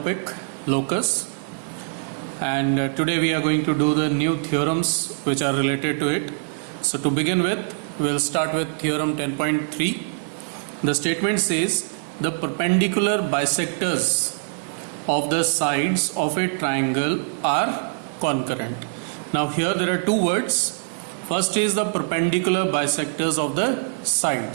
locus, and today we are going to do the new theorems which are related to it. So to begin with, we will start with theorem 10.3. The statement says the perpendicular bisectors of the sides of a triangle are concurrent. Now here there are two words. First is the perpendicular bisectors of the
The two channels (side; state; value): left; silent; digital silence